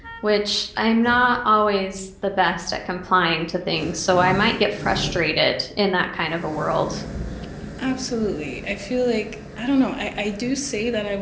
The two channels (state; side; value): identical; both; correlation 1.00